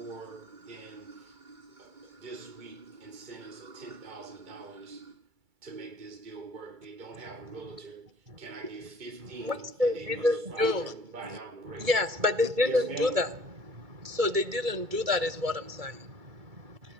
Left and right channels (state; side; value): late; left; 2.3 ms